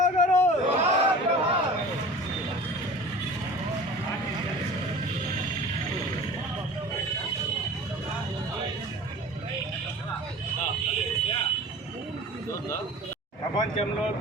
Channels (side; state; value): both; normal; correlation 0.40